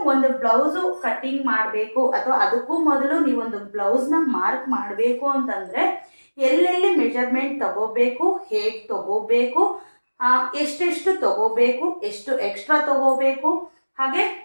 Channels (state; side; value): inverted; both; correlation -1.00